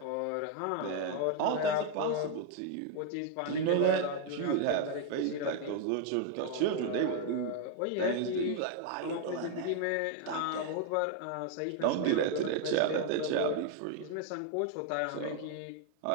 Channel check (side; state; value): both; different; correlation 0.00